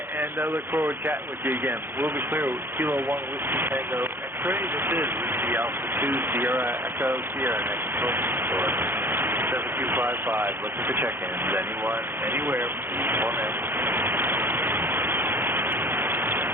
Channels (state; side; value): late; left; 0.10 ms